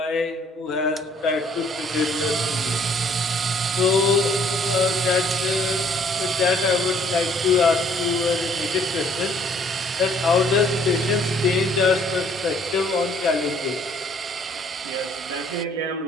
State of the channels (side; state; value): both; normal; correlation 0.61